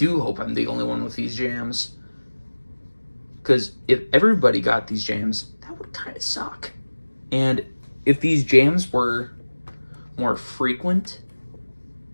hope I'm the only one with these jams. Because if everybody got these jams, that would kind of suck. And if these jams were more frequent,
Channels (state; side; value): inverted; both; correlation -1.00